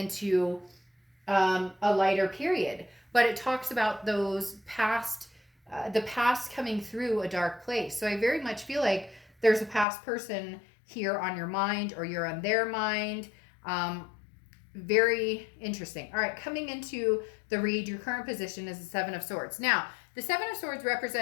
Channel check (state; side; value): drops out; right; at 9.9 s